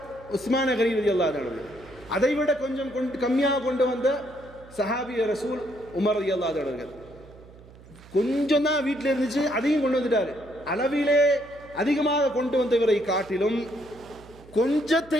உஸ்மான கனி ரலியல்லாஹு அன்ஹு, அதை விட கொஞ்சம் கம்மியாக கொண்டு வந்த சஹாபி ரசூல் உமர் ரலியல்லாஹு அன்ஹு, கொஞ்சம் தான் வீட்டில் இருந்துச்சு, அதையும் கொண்டு வந்துட்டாரு. அளவிலே அதிகமாக கொண்டு வந்தவரை காட்டிலும்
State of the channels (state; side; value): noise; right; hum, 21 dB below the sound